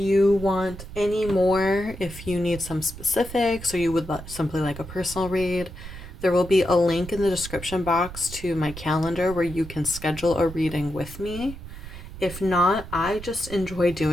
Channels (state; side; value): noise; right; rumble, 13 dB below the sound